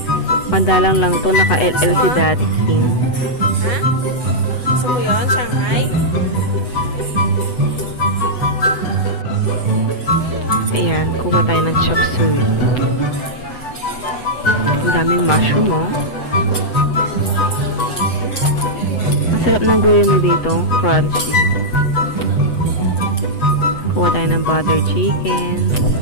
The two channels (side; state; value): right; late; 8.0 ms